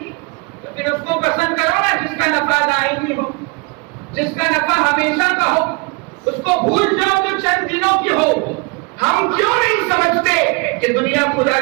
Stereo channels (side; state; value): left; quieter; 28.8 dB